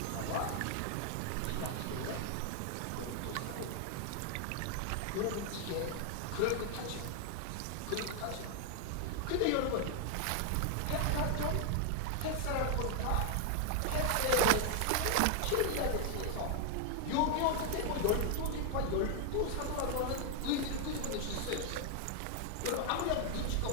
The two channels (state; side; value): different; both; correlation 0.00